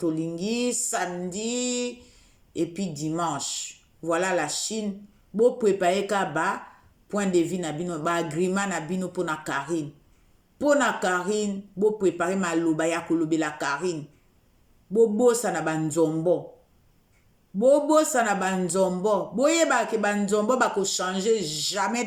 samedi et puis dimanche. Voilà la Chine bo préparer ka ba point de vue na bino ba agreement na bino pour na Karine. Pour na Karine, bo préparer ma loba ya kolobela Karine. Bo bosa na banzombo. Boyeba ke banzombo bako changer jamais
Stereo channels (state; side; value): identical; both; correlation 1.00